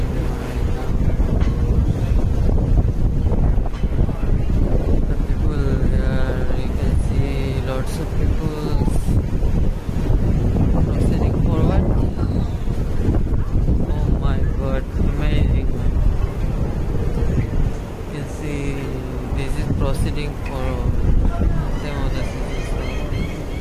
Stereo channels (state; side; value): identical; both; correlation 1.00